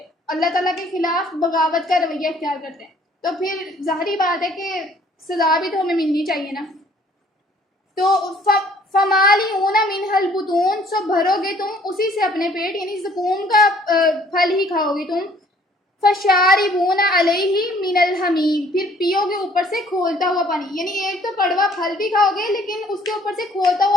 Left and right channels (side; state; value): both; normal; correlation 0.59